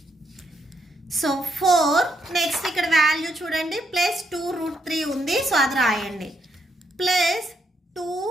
సో 4. నెక్స్ట్ ఇక్కడ వాల్యూ చూడండి, ప్లస్ 2 రూట్ 3 ఉంది, సో అది రాయండి. Plus 2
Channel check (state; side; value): normal; both; correlation 0.77